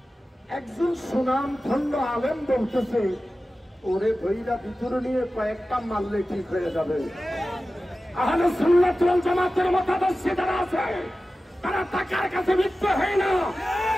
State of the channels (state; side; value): normal; both; correlation 0.95